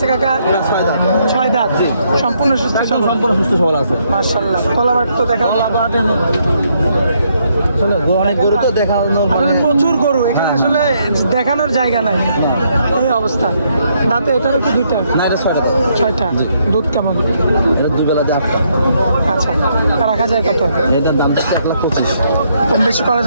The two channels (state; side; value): inverted; both; correlation -0.73